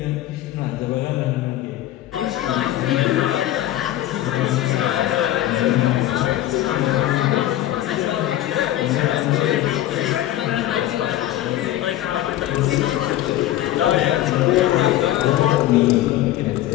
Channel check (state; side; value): quieter; right; 13.7 dB